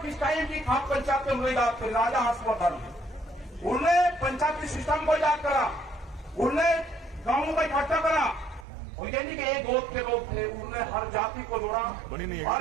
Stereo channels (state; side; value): drops out; left; at 8.7 s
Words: किस टाइम की खाप पंचायत में हुई बात। राजा हर्षवर्धन उन्होंने पंचायती सिस्टम को याद करा, उन्होंने गांवों को इकट्ठा करा, और ये नहीं कि एक गोद के लोग थे, उन्होंने हर जाति को जोड़ा,